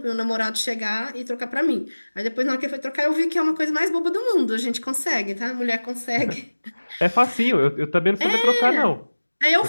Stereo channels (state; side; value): inverted; both; correlation -1.00